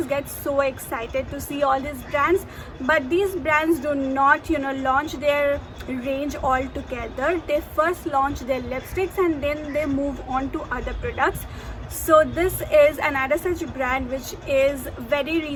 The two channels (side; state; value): both; identical; correlation 1.00